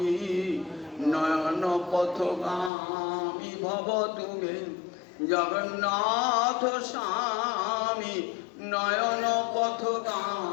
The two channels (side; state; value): right; drops out; at 2.7 s